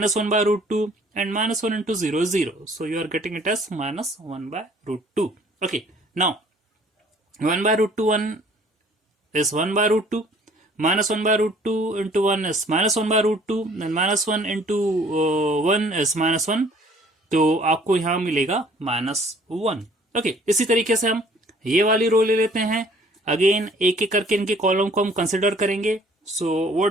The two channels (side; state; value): both; normal; correlation 0.56